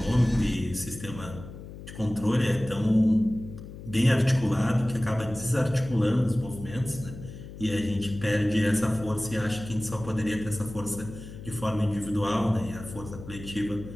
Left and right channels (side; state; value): left; noise; hum, 13 dB below the sound